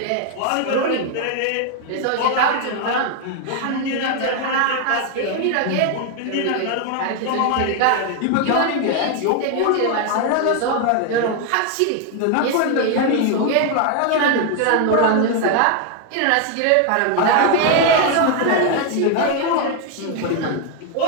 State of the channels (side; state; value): both; different; correlation 0.00